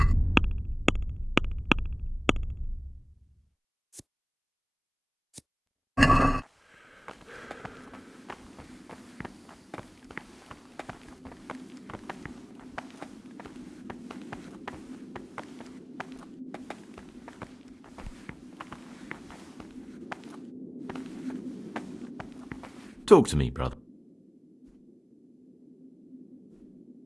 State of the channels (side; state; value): both; identical; correlation 1.00